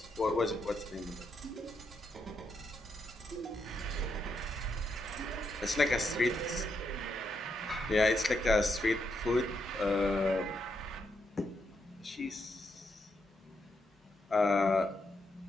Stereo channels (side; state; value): both; normal; correlation 0.80